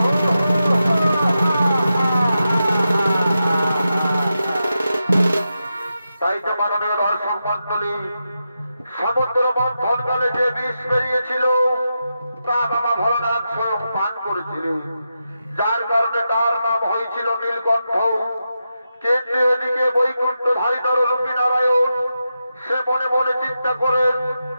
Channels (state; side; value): inverted; both; correlation -0.88